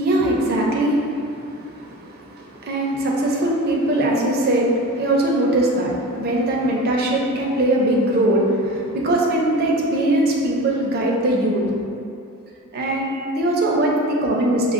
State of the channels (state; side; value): normal; both; correlation 0.33